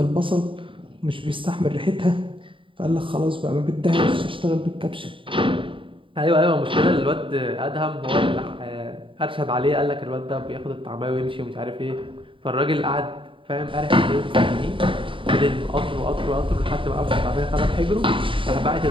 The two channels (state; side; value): late; left; 0.25 ms